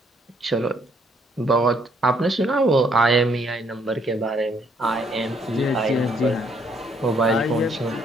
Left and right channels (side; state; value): both; normal; correlation 0.68